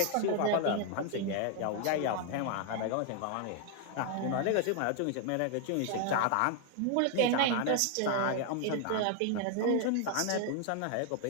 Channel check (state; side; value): different; both; correlation 0.00